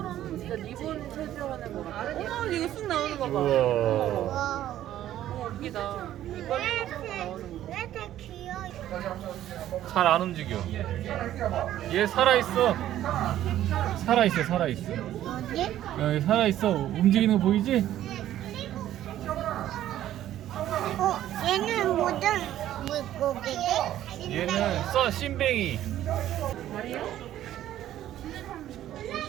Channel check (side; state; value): left; quieter; 12.6 dB